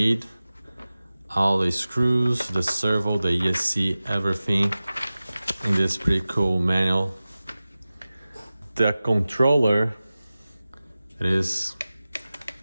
All the screws, the servo, the ESC, everything in this pretty cool manual. The controller,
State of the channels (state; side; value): inverted; both; correlation -0.96